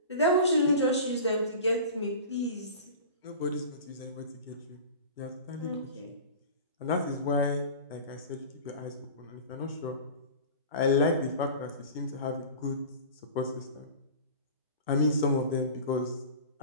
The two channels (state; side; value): inverted; both; correlation -0.36